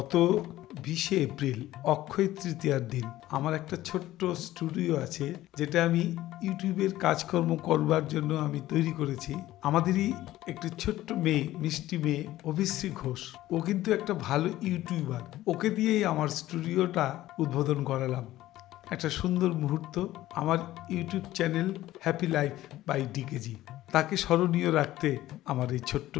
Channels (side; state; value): right; quieter; 15.2 dB